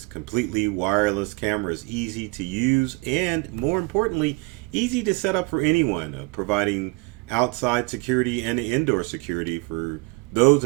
completely wireless camera is easy to use and, more importantly, easy to set up for anyone, providing outside security and indoor security for those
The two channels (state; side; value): quieter; left; 26.9 dB